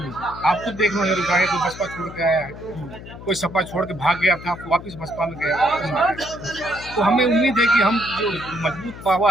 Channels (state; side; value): noise; left; hum, 14 dB below the sound